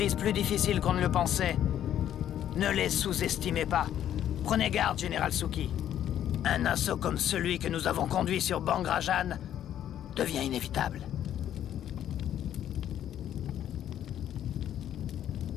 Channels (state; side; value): quieter; right; 10.8 dB